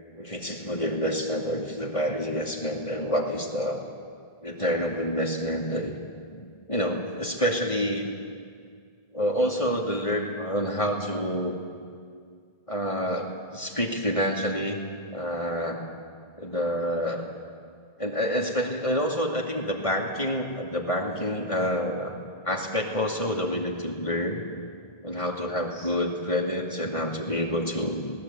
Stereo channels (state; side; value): late; right; 1.6 ms